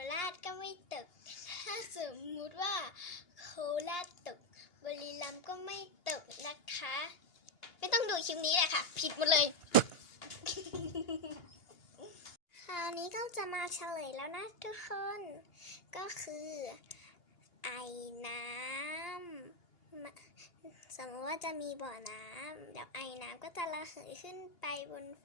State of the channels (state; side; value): late; right; 2.8 ms